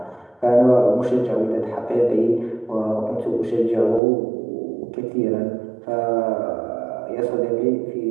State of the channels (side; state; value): left; drops out; at 4.0 s